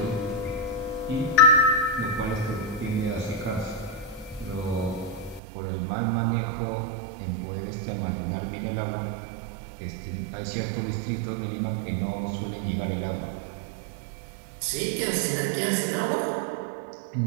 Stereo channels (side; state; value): left; drops out; at 5.4 s